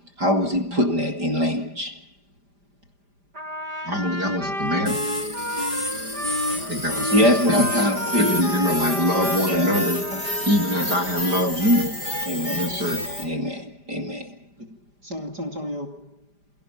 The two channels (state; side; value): late; left; 5.0 ms